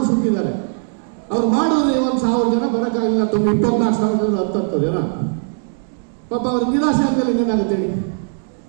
ಸುತ್ತಿದ್ದಾರೆ. ಅವ್ರು ಮಾಡಿದ್ರೆ 1,000 ಜನ ಬರೋಕ್ಕಾಗಿಲ್ಲ. 24,000 10 ಜನ ಪಾಪ ಅವ್ರಿಗೆ ನಿರಾಶೆ ಆಗ್ತದೆ. ಏನಾಗುತ್ತೆ ಹೇಳಿ?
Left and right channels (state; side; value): silent; left; digital silence